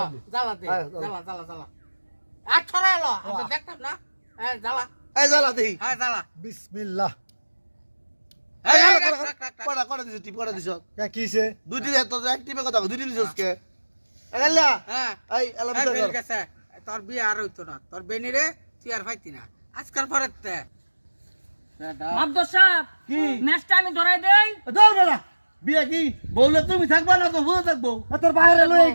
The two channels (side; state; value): both; inverted; correlation -1.00